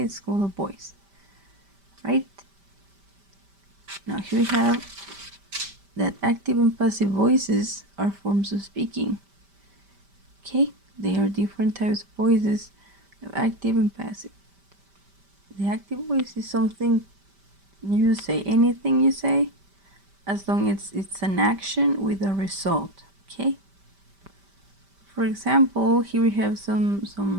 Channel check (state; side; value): late; left; 5.1 ms